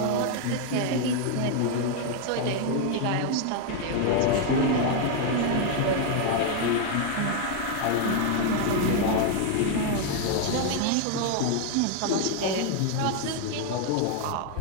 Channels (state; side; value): different; both; correlation 0.01